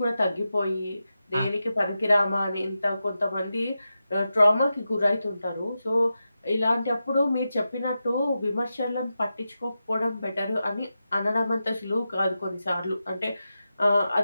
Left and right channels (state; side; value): inverted; both; correlation -0.90